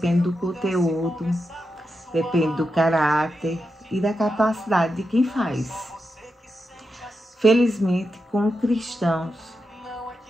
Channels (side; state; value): both; normal; correlation 0.87